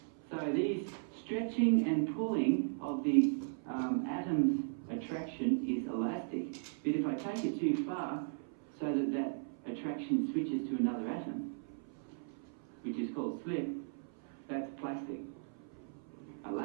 So these stretching and pulling of the atom's attraction is elastic. But if I take it too far, so that that attraction switches to another atom, which is called slip, that's plastic.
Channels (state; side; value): silent; left; 53 dB below the other